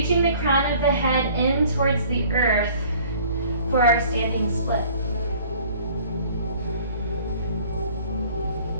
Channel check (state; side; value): inverted; both; correlation -0.52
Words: the crown of the head in towards the earth for our standing split.